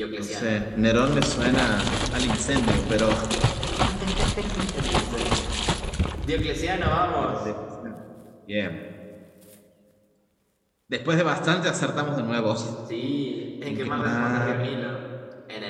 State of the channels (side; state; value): both; identical; correlation 1.00